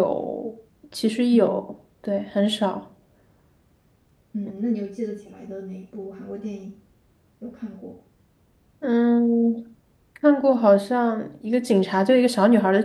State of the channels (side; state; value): both; identical; correlation 1.00